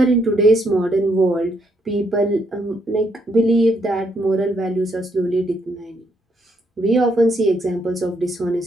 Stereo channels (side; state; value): both; normal; correlation 0.74